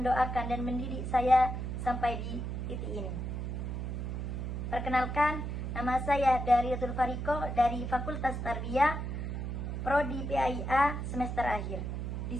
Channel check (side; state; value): right; noise; hum, 4 dB below the sound